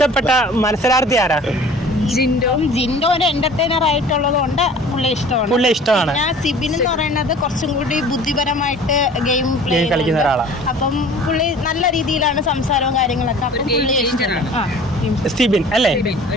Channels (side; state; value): both; normal; correlation 0.46